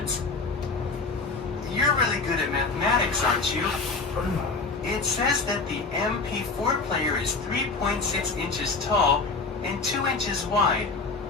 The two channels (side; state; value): right; quieter; 4.1 dB